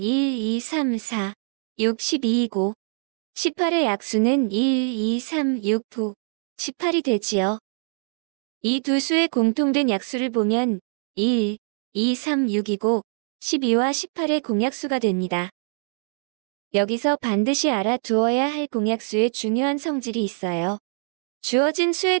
2, 3, 4, 6, 12이고 18의 약수는 1, 2, 3, 6, 9, 18이 되지요. 이 두 수의 공통된 약수를 보면 1, 2, 3, 6이고 12와 18의 공약수가 됩니다. 여기서 반드시 알아두어야 할 공약수의 중요한 성질이 있어요. 주어진 수에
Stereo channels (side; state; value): left; silent; 63 dB below the other